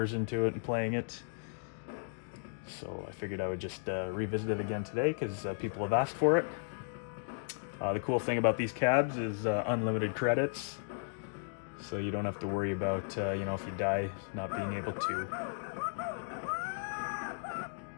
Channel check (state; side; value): silent; right; digital silence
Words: into it and playing it. So I figured I would just revisit it again today because people have asked for it. The cool thing about these cabs is unlimited credits. So you don't have to worry about, if you die, not being able to.